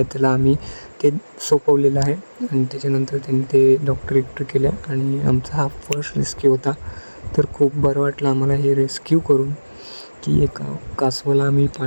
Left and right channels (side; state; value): both; inverted; correlation -1.00